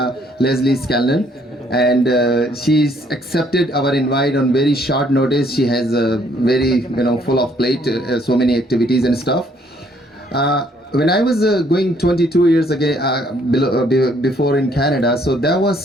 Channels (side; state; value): both; normal; correlation 0.65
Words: Leslie Scanlon. And she's accepted our invite on very short notice. She has a very, full of plate, so many activities and stuff. When I was going 22 years ago, before in Canada, so there was